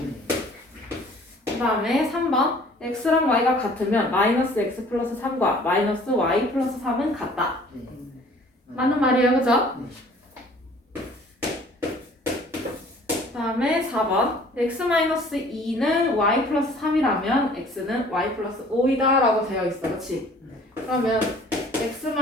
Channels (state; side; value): normal; both; correlation 0.53